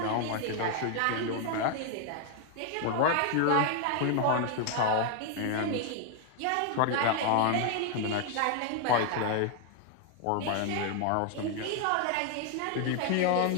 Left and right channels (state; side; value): different; both; correlation 0.00